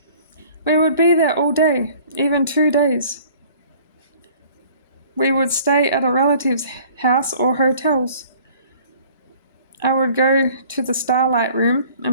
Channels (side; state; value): both; inverted; correlation -0.52